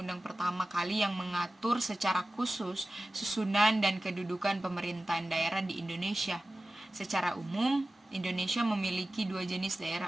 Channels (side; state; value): both; normal; correlation 0.95